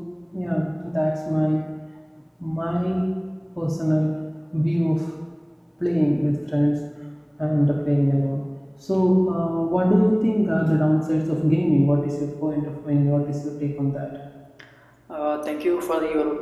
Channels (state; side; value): identical; both; correlation 1.00